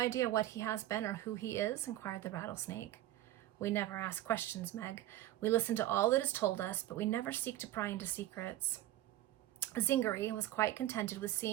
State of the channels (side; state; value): left; quieter; 14.2 dB